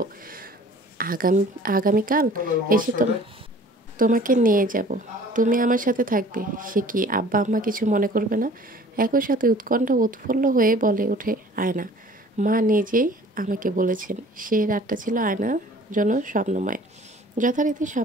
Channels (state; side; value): normal; both; correlation 0.49